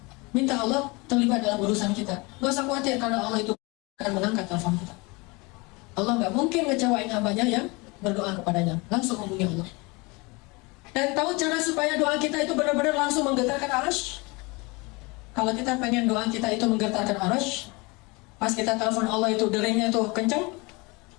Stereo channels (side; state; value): right; quieter; 26.3 dB